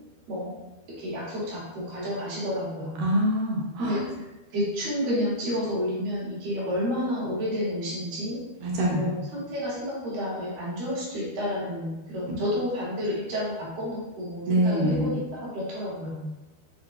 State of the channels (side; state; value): left; late; 12 ms